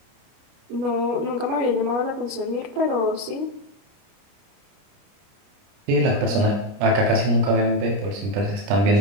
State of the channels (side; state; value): left; late; 30 ms